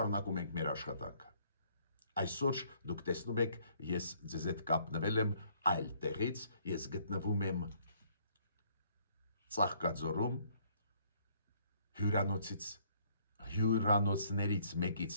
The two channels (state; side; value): inverted; both; correlation -0.64